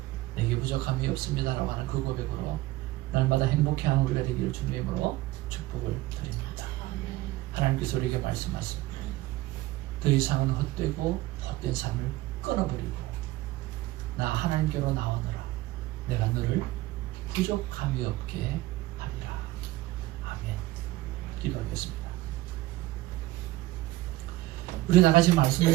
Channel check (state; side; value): quieter; left; 17.6 dB